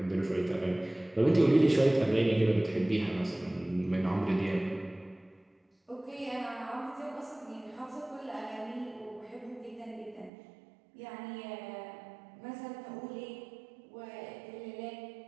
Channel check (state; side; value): drops out; left; at 10.3 s